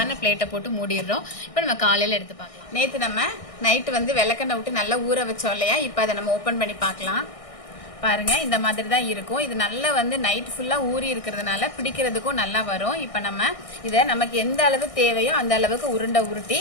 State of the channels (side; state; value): right; late; 1.6 ms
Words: பிளேட்டை போட்டு மூடிடுறோம். இப்போ நம்ம காலையில எடுத்து பார்க்கலாம். நேற்று நம்ம நைட்டு வந்து விளக்கெண்ணெய் விட்டு நல்லா ஊற வச்சோம் இல்லையா, இப்போ அதை நம்ம ஓப்பன் பண்ணி பார்க்கலாம். பாருங்க இந்த மாதிரி தான் இருக்கும். இது நல்லா வந்து நைட் ஃபுல்லா ஊறி இருக்கிறதுனால பிடிக்கிறதுக்கும் நல்லா வரும். இப்போ நம்ம இதை நமக்கு எந்த அளவு தேவையோ அந்த அளவுக்கு உருண்டை உருட்டி